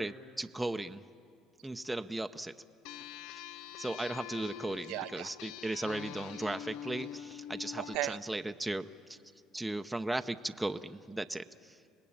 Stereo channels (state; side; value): normal; both; correlation 0.85